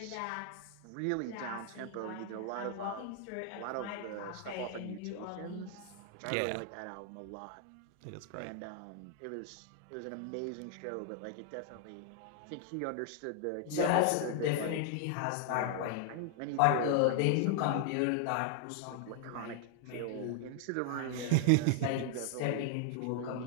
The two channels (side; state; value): both; different; correlation 0.00